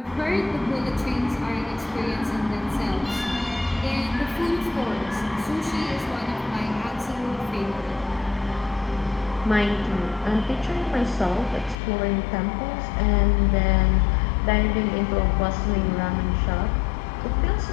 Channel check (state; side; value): drops out; right; at 11.8 s